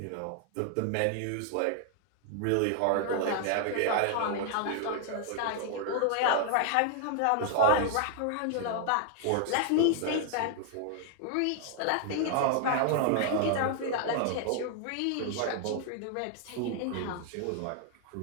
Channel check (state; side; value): different; both; correlation 0.00